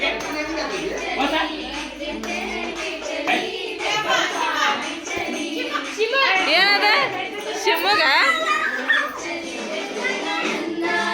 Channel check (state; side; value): identical; both; correlation 1.00